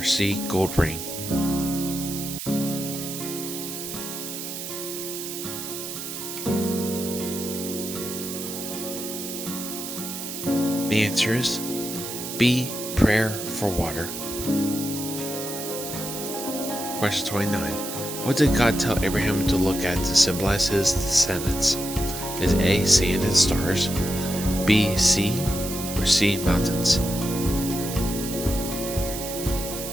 C. gold ring? The answer is B. prayer for water. Question 29. What did God tell Abraham to look at to symbolize his descendants? Is A. sand and stars, B. sea, or C. mountains?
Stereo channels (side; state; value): right; noise; hiss, 7 dB below the sound